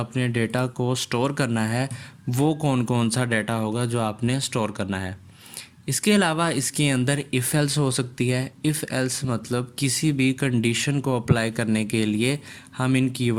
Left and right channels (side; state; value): both; identical; correlation 1.00